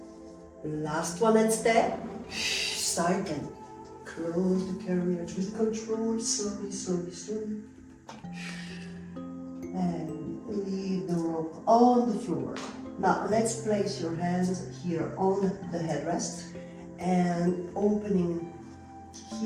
Last one and step. Side bend. Close the carriage with control, slowly, slowly, slowly. And leave the rope on the floor. Now let's place your hands here on the headrest and opening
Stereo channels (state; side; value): identical; both; correlation 1.00